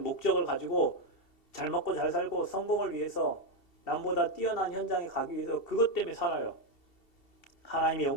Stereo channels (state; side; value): late; right; 2.7 ms